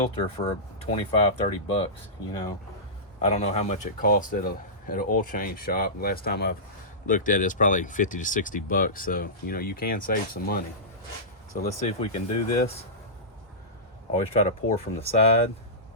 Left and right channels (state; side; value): normal; both; correlation -0.18